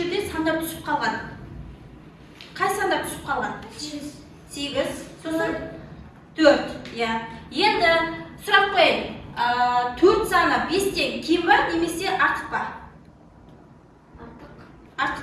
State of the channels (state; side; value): identical; both; correlation 1.00